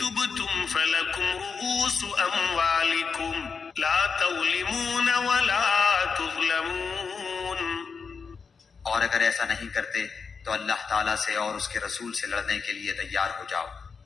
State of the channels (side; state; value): right; quieter; 5.4 dB